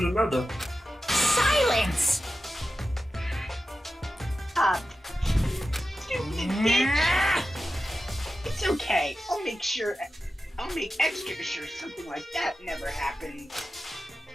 another. Silence! Stop. Stupid bitch. It's okay. I'll make extra sure something like that never happens.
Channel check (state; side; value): normal; both; correlation 0.93